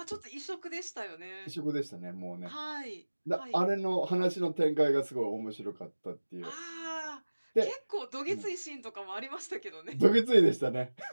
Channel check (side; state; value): both; inverted; correlation -1.00